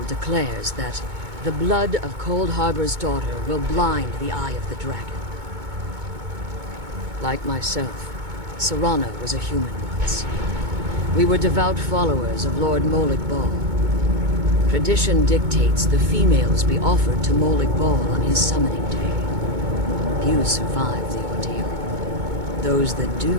declares that the blood of Cold Harbor's daughter will blind the eye of the dragon. Like myself, Serana was a human once. We were devout followers of Lord Molig Bal. Tradition dictates the females be offered to Molig Bal on his summoning day. Few survive the ordeal. Those that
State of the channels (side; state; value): left; late; 2.2 ms